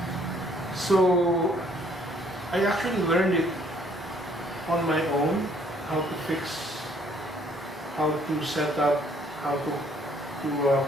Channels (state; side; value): normal; both; correlation 0.63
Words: So I actually learned it on my own, how to fix, how to set up, how to